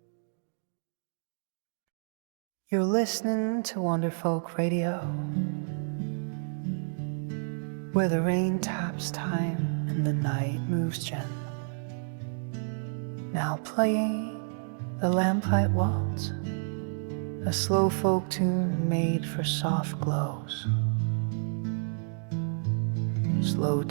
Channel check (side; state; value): left; silent; digital silence